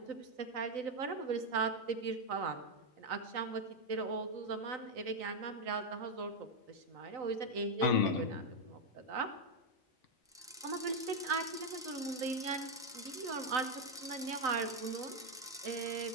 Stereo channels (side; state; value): both; normal; correlation 0.03